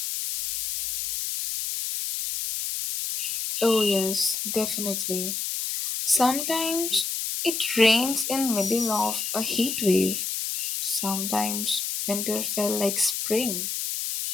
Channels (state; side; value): noise; left; hiss, 2 dB below the sound